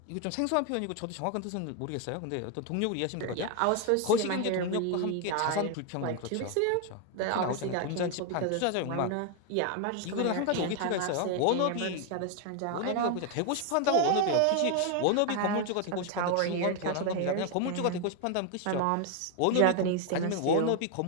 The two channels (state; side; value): different; both; correlation 0.01